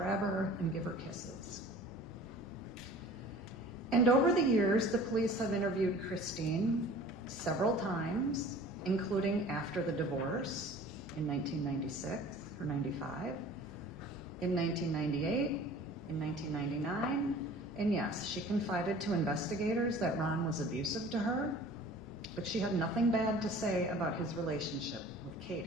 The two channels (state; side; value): normal; both; correlation 0.45